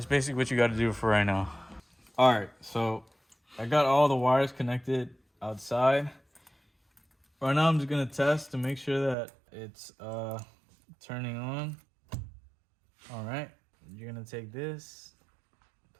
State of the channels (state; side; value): drops out; left; at 9.2 s